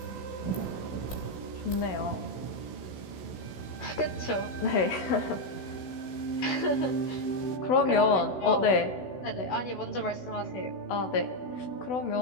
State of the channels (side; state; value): right; late; 16 ms